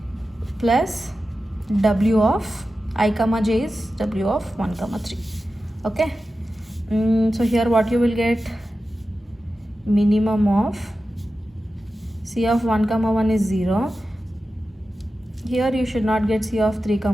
plus W of I comma j is W of 1 comma 3. Okay. So here what you will get? Minimum of C of 1 comma 1 is 0. Here you should not get C of 3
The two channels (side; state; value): both; normal; correlation 0.93